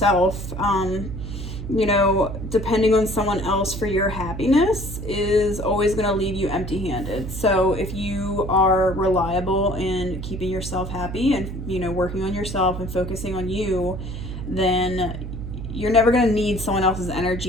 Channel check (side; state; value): right; noise; hum, 7 dB below the sound